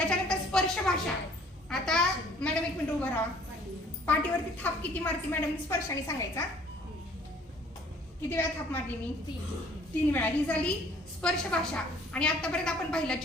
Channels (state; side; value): normal; both; correlation 0.56